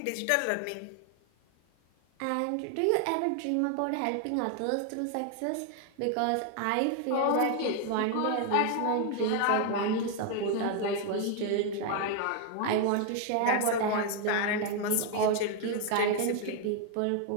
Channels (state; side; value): different; both; correlation 0.01